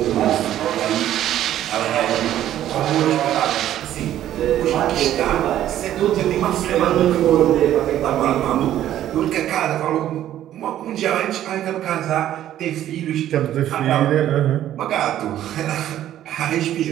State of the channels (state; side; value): quieter; left; 12.1 dB